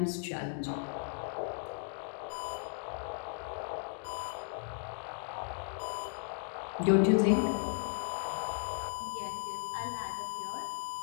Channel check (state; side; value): silent; right; digital silence